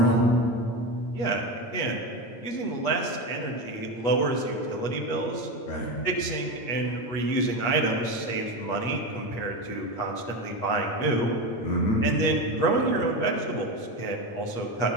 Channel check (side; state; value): right; late; 8.4 ms